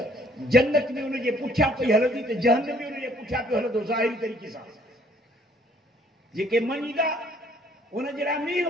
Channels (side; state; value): both; normal; correlation 0.61